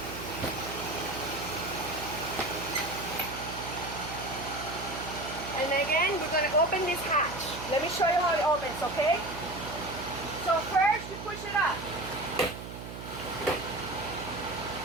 And again, we're going to open this hatch. Let me show you how it opens, okay? So first, you push it up.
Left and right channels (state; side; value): noise; right; hum, 10 dB below the sound